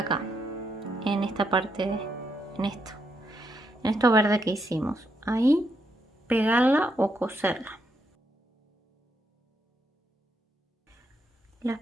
En esta parte, en esto verde que hicimos. Ahí, pegarla o coserla. Las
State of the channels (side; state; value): both; normal; correlation 0.79